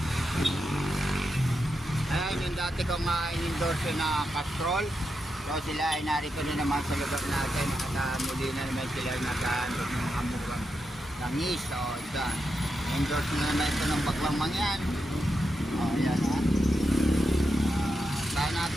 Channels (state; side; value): normal; both; correlation 0.86